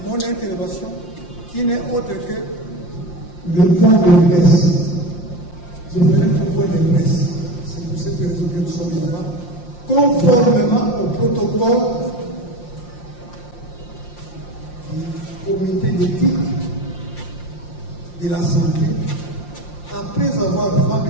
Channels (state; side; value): late; right; 5.7 ms